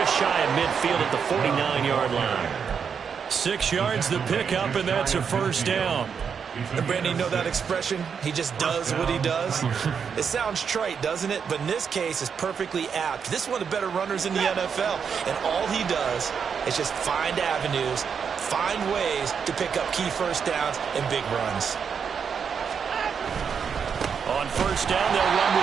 shy of midfield at the 49-yard line. 6 yards the pickup, and that's a 1st down. And Brandon, you know that expression? He just does what he does. It sounds trite, doesn't it? But in this case, it's perfectly apt. This is one of the better runners in the NFL. And all he does is just find avenues, find ways to pick up key 1st downs and big runs. On 1st down, they'll run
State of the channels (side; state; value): left; quieter; 6.7 dB